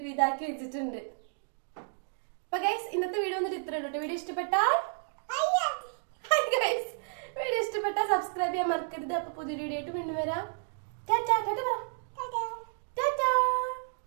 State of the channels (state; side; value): silent; left; digital silence